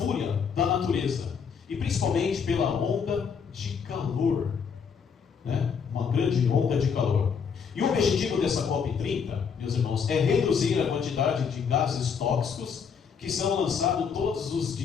da natureza e principalmente pela onda de calor, uma grande onda de calor. E o objetivo dessa COP30, meus irmãos, é reduzir a quantidade de gases tóxicos que são lançados todos os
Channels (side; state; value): right; quieter; 6.4 dB